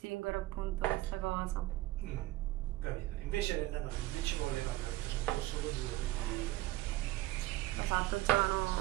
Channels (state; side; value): quieter; left; 17.2 dB